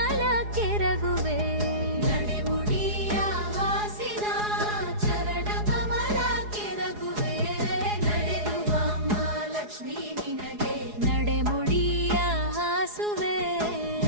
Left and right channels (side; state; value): left; late; 4.8 ms